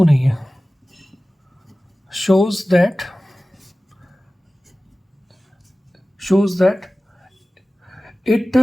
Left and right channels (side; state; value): both; normal; correlation 0.97